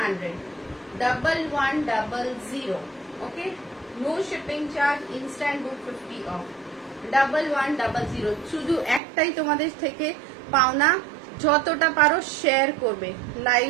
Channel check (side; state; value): left; drops out; at 9.0 s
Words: 1100। Okay, no shipping charge, instant book 50 off, 1100। শুধু একটাই তোমাদের থেকে পাওনা, যতটা পারো শেয়ার করবে,